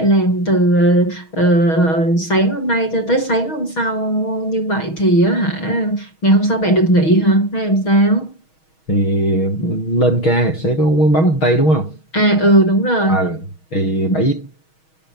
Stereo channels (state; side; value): late; right; 6.3 ms